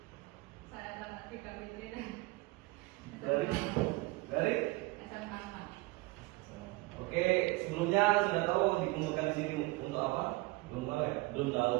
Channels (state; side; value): quieter; left; 22.4 dB